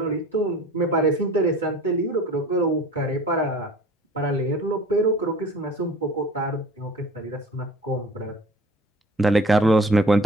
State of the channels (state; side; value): normal; both; correlation 0.44